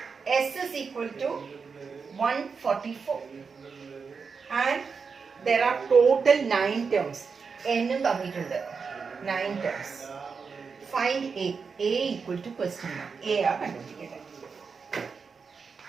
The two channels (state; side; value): quieter; left; 5.4 dB